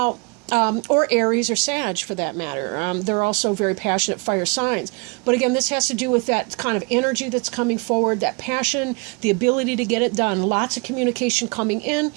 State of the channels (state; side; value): quieter; left; 30.9 dB